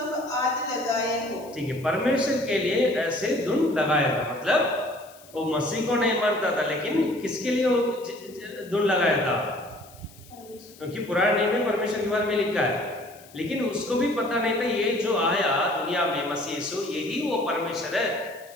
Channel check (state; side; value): noise; left; hiss, 23 dB below the sound